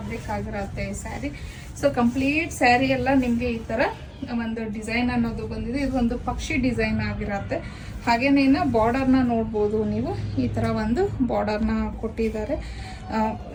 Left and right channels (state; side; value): identical; both; correlation 1.00